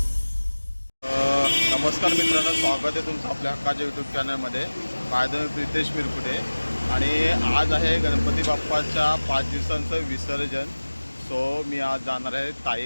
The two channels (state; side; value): inverted; both; correlation -1.00